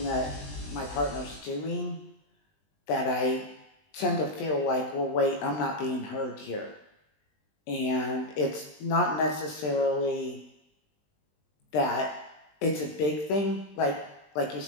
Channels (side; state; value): right; late; 20 ms